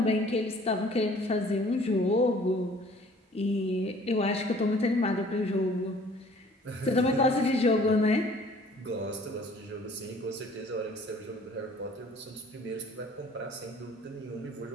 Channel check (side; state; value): both; normal; correlation 0.54